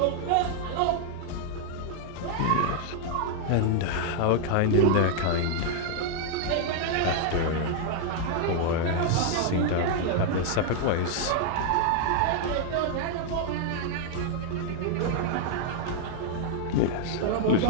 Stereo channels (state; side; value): different; both; correlation 0.00